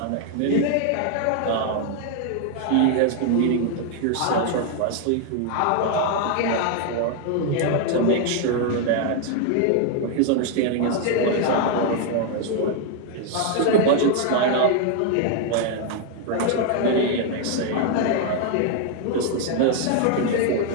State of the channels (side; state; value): both; different; correlation 0.00